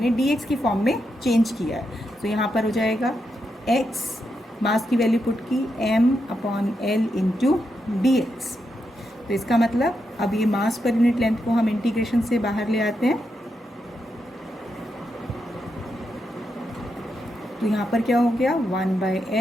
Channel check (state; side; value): normal; both; correlation 0.84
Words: dx की फॉर्म में चेंज किया है. तो यहाँ पर हो जाएगा x, मास की वैल्यू पुट की m/L इंटू dx. तो इसका मतलब अब ये मास पर यूनिट लेंथ को हम इंटीग्रेशन से बाहर ले आते हैं. तो यहाँ पर क्या हो गया?